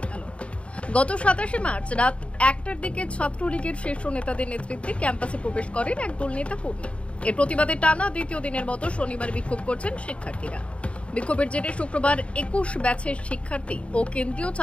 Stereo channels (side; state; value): right; late; 0.061 ms